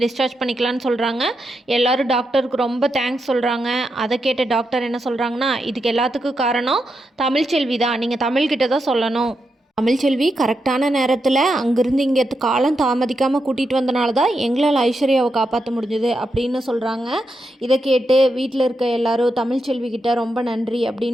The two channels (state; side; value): normal; both; correlation 0.85